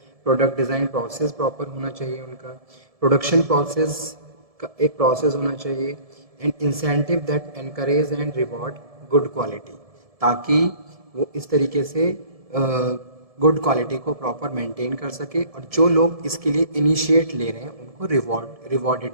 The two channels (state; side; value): late; left; 1.7 ms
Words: Product design process proper होना चाहिए, उनका प्रोडक्शन प्रोसेस का एक प्रोसेस होना चाहिए, and incentive that encourage and reward good quality, ताकि वो इस तरीके से गुड क्वालिटी को प्रॉपर मेंटेन कर सके, और जो लोग इसके लिए इनिशिएट ले रहे हैं उनको